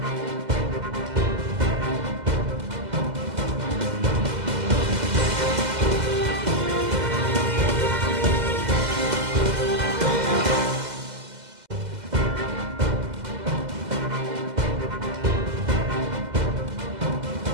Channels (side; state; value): left; late; 2.0 ms